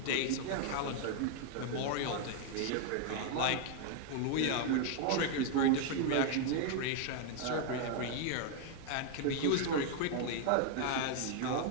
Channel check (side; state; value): both; different; correlation 0.00